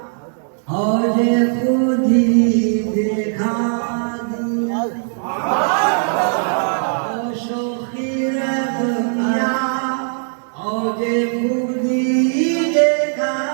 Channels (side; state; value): left; silent; 67 dB below the other